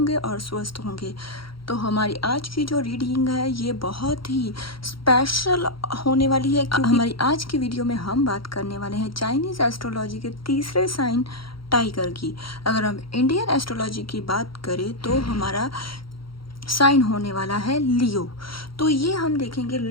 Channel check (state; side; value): late; right; 0.74 ms